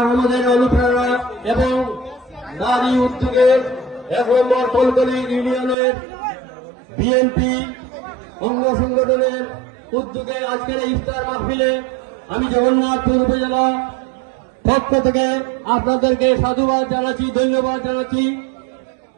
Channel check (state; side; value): drops out; left; at 5.8 s